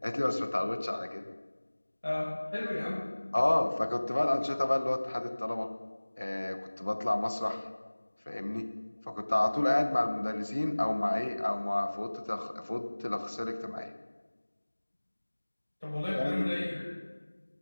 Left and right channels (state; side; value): inverted; both; correlation -1.00